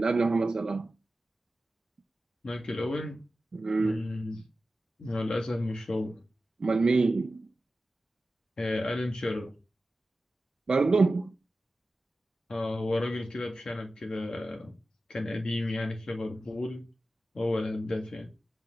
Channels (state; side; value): normal; both; correlation 0.94